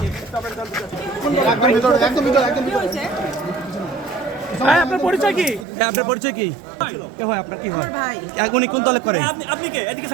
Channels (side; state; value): left; drops out; at 5.7 s